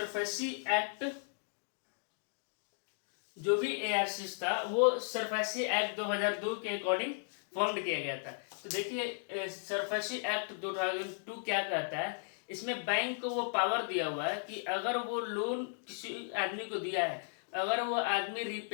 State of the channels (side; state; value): right; silent; digital silence